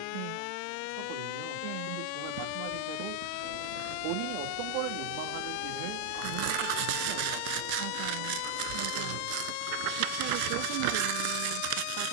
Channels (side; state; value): both; different; correlation 0.00